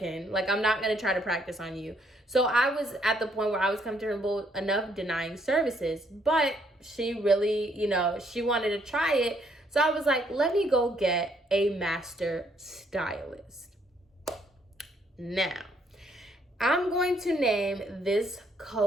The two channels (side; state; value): both; normal; correlation 0.70